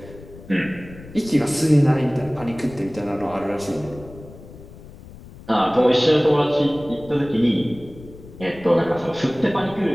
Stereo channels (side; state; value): left; noise; rumble, 18 dB below the sound